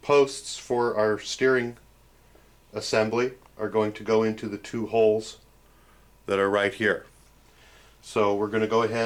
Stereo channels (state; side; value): identical; both; correlation 1.00